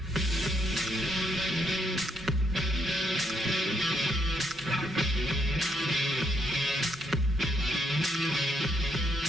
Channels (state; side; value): normal; both; correlation 0.75